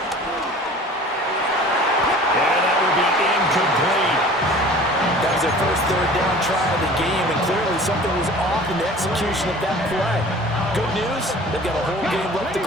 And that will be incomplete. That was their first 3rd down try of the game, and clearly something was off in the execution of that play. Good news, they've got a whole game left to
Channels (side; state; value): both; normal; correlation 0.44